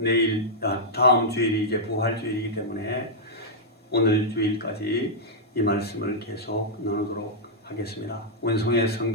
다음 주일이 이제 부활주일이기 때문에 오늘 주일까지 이 말씀을 계속 나누도록 하겠습니다. 원성의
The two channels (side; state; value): both; normal; correlation -0.08